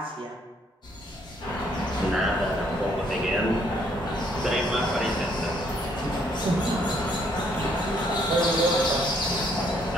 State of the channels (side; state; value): both; normal; correlation 0.68